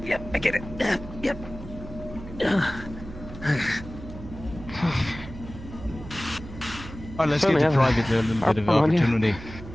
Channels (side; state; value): right; noise; hum, 13 dB below the sound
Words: Yep, I get it. Yep. Alright, let's get Certainly to have private a little bit of on you. opportunity.